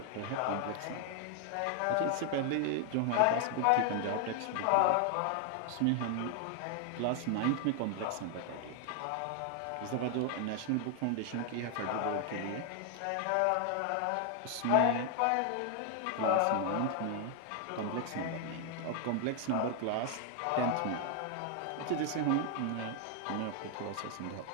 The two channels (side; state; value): both; different; correlation 0.00